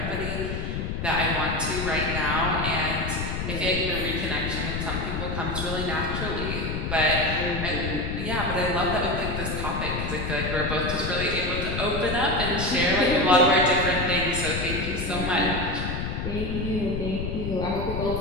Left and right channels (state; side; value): noise; left; rumble, 3 dB below the sound